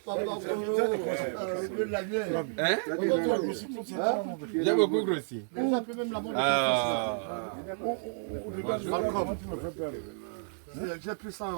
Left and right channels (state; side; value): silent; left; digital silence